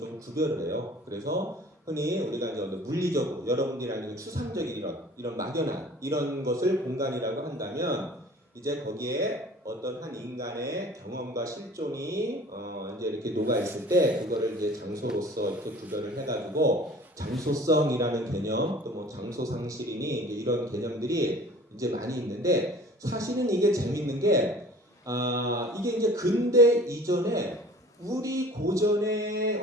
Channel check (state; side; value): normal; both; correlation 0.46